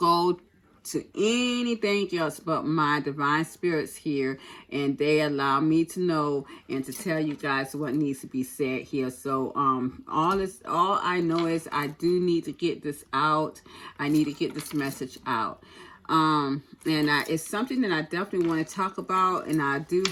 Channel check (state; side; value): identical; both; correlation 1.00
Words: to anything else but my divine spirits here, and they allow me to know and to tell you guys what needs to be said here. So all I know is I do need to get this out. I need to get this message out. It's something that I definitely want to talk about, and I do